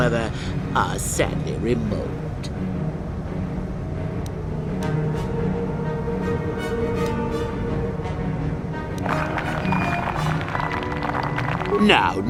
are sadly remote.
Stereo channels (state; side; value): identical; both; correlation 1.00